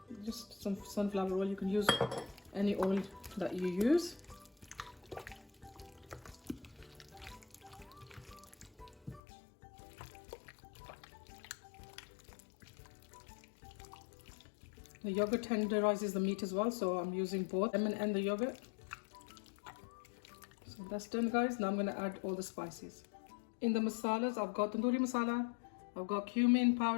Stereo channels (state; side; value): drops out; right; at 9.2 s